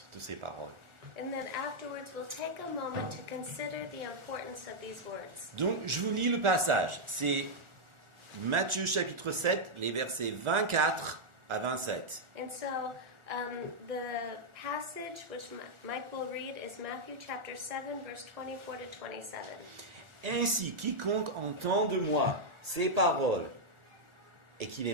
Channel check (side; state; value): left; late; 1.4 ms